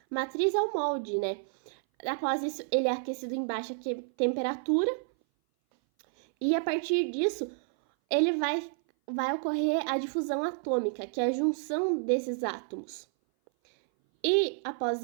Matriz é o molde, Após isso, ele é aquecido em baixa temperatura e a partir disso, ele vai ocorrer a difusão atômica, que é a junção desses átomos. E após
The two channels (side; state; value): left; silent; 57 dB below the other